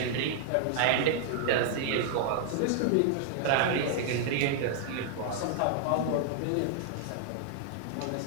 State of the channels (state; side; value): different; both; correlation 0.00